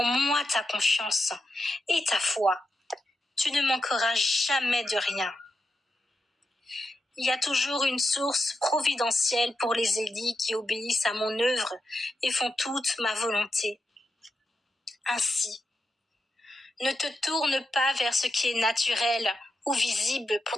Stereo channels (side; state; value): both; normal; correlation 0.87